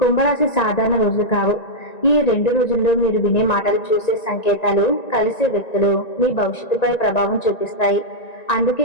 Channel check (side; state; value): right; late; 1.9 ms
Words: సాధారణ రోజులు కావు. ఈ 2 రోజుల్లో మీరు వినే మాటలు, చూసే సంకేతాలు, కలిసే వ్యక్తులు మీ భవిష్యత్తుపై ప్రభావం చూపిస్తాయి. అందుకే